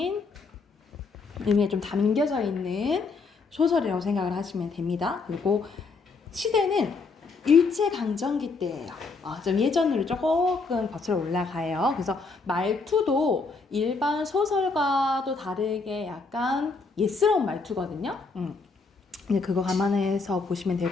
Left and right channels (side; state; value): right; quieter; 4.2 dB